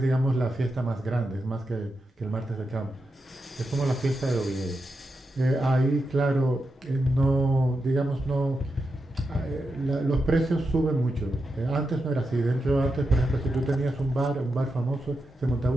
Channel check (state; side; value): normal; both; correlation 0.87